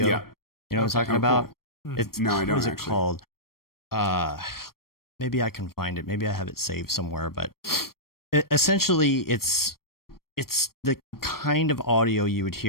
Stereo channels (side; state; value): right; late; 0.93 ms